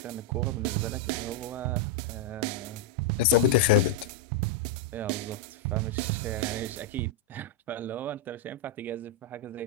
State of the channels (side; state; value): both; normal; correlation -0.02